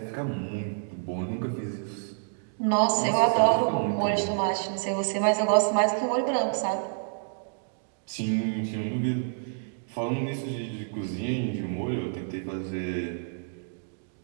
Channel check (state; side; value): silent; left; digital silence